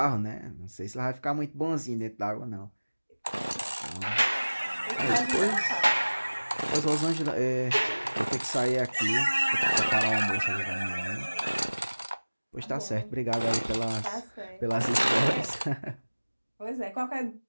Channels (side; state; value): both; inverted; correlation -1.00